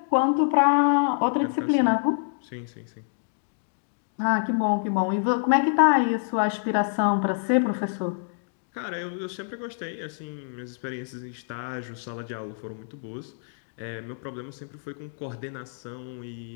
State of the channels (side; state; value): right; silent; digital silence